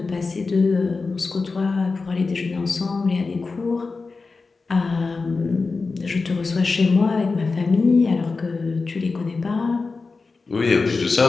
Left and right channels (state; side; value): quieter; right; 4.1 dB